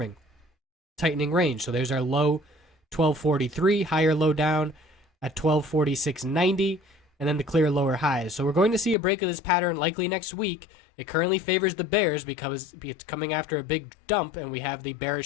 Tightening range. So there's our low 1243, higher low down at 1246.90, and then the clear lower highs. So we're going to see a break of this pattern likely next week. It currently favors the bears because it's coming after a big dump, and we have the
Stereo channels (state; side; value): drops out; right; at 9.0 s